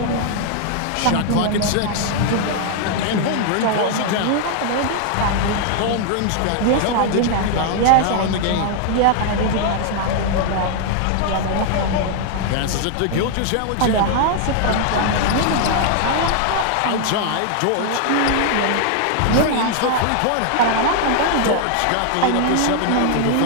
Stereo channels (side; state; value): both; different; correlation 0.00